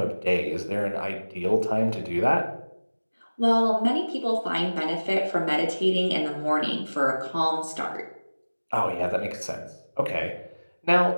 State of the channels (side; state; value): both; inverted; correlation -1.00